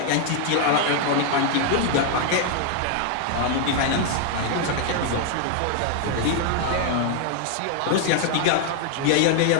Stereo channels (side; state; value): both; different; correlation 0.00